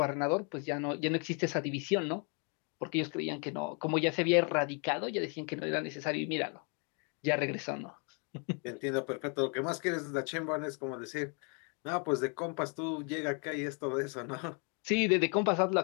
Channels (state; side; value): quieter; right; 37.4 dB